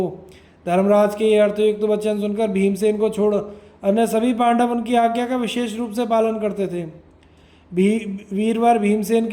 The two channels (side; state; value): both; identical; correlation 1.00